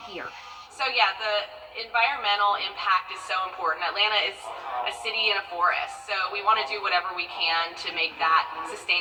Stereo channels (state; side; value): identical; both; correlation 1.00